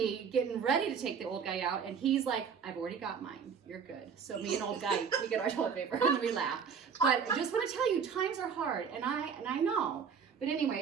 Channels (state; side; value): quieter; left; 6.6 dB